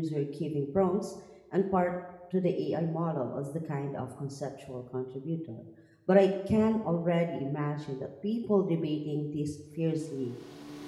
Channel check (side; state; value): both; identical; correlation 1.00